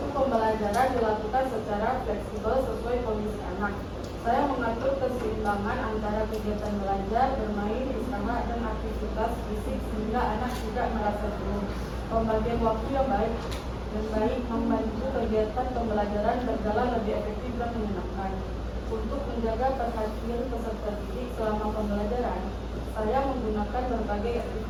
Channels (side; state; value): both; identical; correlation 1.00